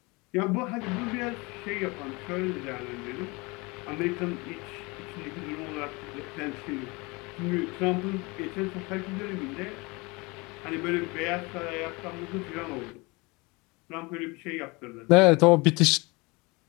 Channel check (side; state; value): right; quieter; 26.0 dB